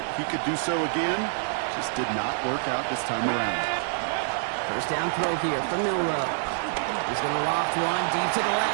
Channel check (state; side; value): silent; left; digital silence